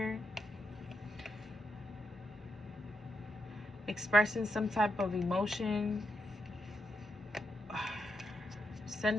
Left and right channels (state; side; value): normal; both; correlation 0.82